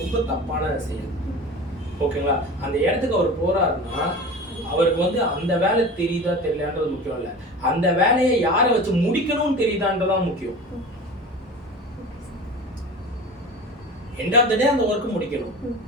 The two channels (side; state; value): both; normal; correlation 0.34